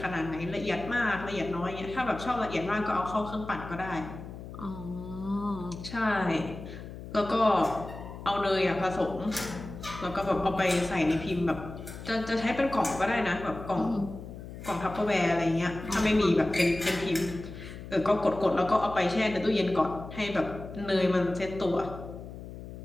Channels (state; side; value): noise; left; hum, 12 dB below the sound